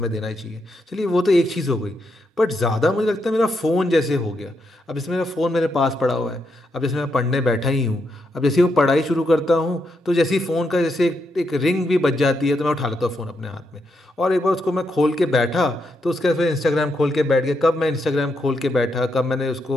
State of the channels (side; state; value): both; normal; correlation 0.81